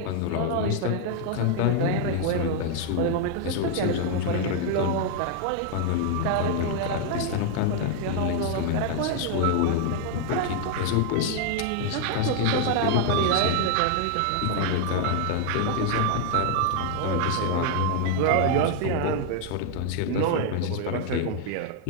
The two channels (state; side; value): different; both; correlation 0.00